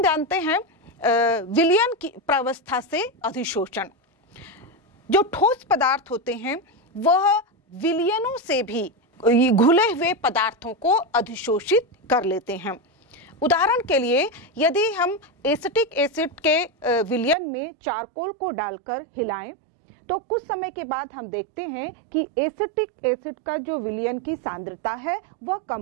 हम जानते हैं विलयन की प्रावस्था से अधिशोषण। जो ठोस पदार्थ होते हैं वह विलयनों से भी घुले हुए पदार्थों को अधिशोषित कर लेते हैं। उदाहरण के लिए यदि हम एसिटिक एसिड के विलयन में चारकोल को डालकर हिलाएं तो कुछ समय के बाद हम देखते हैं कि एसिटिक एसिड का जो विलयन की सांद्रता है वह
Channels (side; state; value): left; drops out; at 17.4 s